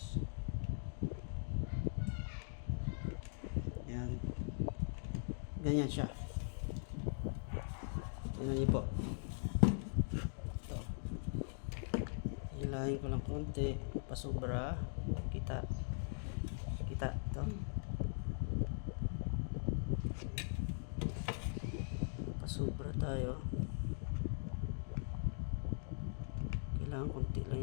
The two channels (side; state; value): right; silent; digital silence